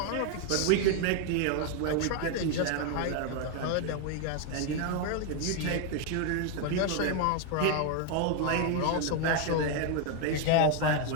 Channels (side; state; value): both; different; correlation 0.01